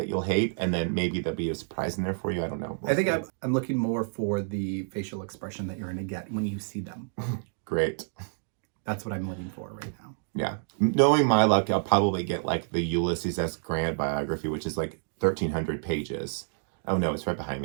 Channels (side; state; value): left; silent; digital silence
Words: you'll hate, and then maybe there'll be a surprise in there for you. I don't know. I think I'm looking more for the facial expression that you're going to get when you see them. Great. That's what I'm looking for right now. Yeah. Knowing my luck, I'll probably get like the Ulysses S. Grant biography, which is like 1,300 pages. Oh no, it's right behind